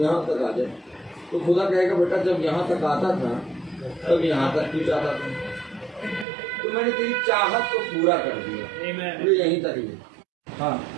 तक आ जाए। तो खुदा कहेगा बेटा जब यहाँ तक आता था तब यहाँ तक भी जाता था, तो मैंने तेरी चाहत को पूरा कर दिया, तो यहीं तक ही। हाँ,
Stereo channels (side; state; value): left; drops out; at 6.2 s